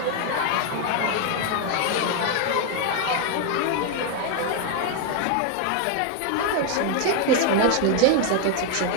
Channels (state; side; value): different; both; correlation 0.01